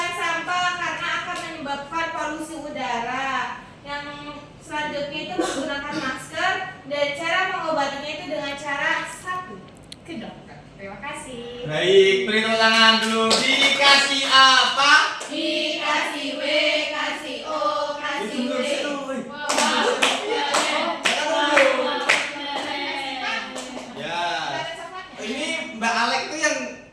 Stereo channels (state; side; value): identical; both; correlation 1.00